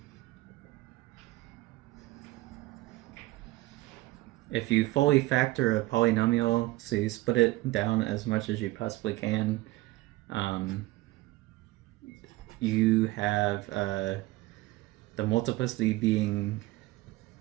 if you fully factor a polynomial, so you split it down as much as you possibly can, you have the multiplicity being,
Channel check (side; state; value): left; quieter; 19.2 dB